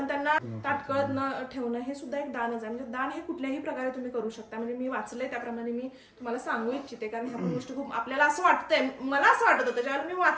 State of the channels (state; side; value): identical; both; correlation 1.00